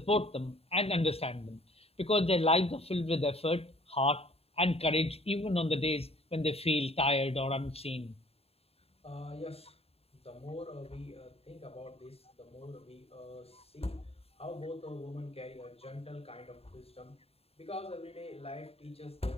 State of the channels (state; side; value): late; right; 0.29 ms